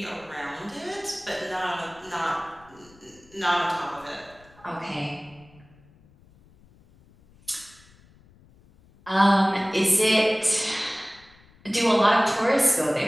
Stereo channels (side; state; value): left; noise; rumble, 28 dB below the sound